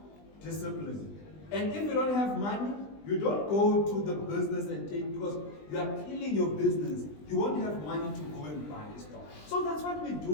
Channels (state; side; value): late; right; 20 ms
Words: Discipline. And if you don't have money, you don't go to the business and take, because you are killing your business. You won't have money to go and buy stuff. So that's what we